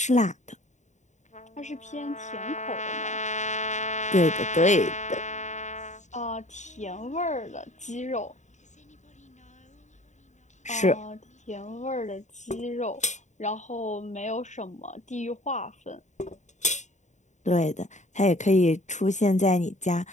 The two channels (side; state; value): right; late; 0.34 ms